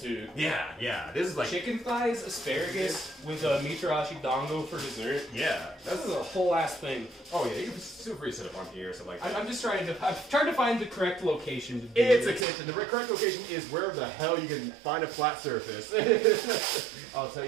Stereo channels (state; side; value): drops out; left; at 12.5 s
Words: Yeah. This is like... Chicken thighs, asparagus, with a mitarashi dango for dessert. Yeah. This is a whole ass thing. Oh yeah, you can feel free to sit up on here, so like... I'm trying to find the correct location to do It's this. a kitchen. The correct location is wherever the hell you can find a flat surface. I'll tell